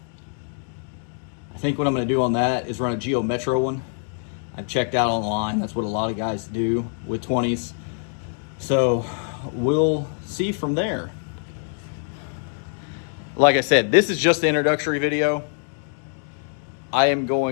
I think what I'm going to do on that is run a Geo Metro one. I've checked out online. That's what a lot of guys do with 20s. So we'll see from there. Like I said, this is just the introductory video. I am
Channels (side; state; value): right; silent; 58 dB below the other